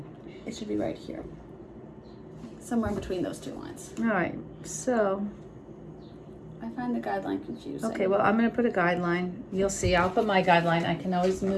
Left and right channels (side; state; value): both; identical; correlation 1.00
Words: It should be right here, somewhere in between those 2 lines. All right. So, I find the guideline confusing. okay, well, I'm going to put a guideline. You'll see. I'll put my guideline. I can always